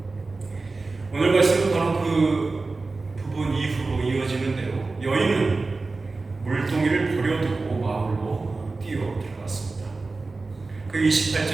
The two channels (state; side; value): quieter; left; 3.7 dB